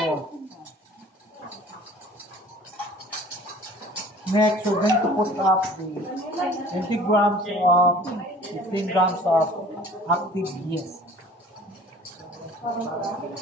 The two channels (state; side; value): normal; both; correlation 0.48